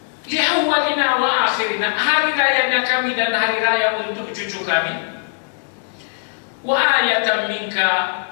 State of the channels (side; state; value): right; silent; digital silence